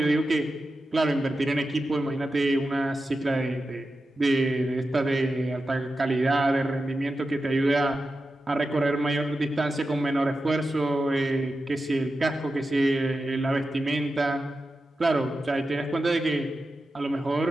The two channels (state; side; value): normal; both; correlation 0.91